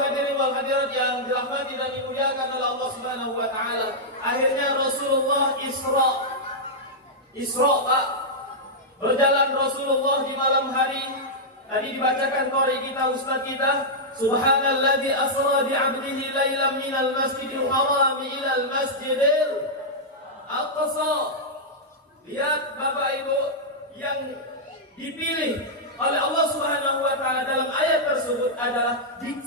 wal hadirat yang dirahmati dan dimuliakan oleh Allah Subhanahu wa taala. Akhirnya Rasulullah Isra Pak. Berjalan Rasulullah di malam hari. Tadi dibacakan qori kita, ustaz kita, Subhanalladzi asra bi 'abdihi lailan minal masjidil haram ila al masjidil aqsa. Lihat Bapak Ibu, yang dipilih oleh Allah Subhanahu wa taala dalam ayat tersebut adalah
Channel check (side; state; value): both; normal; correlation -0.07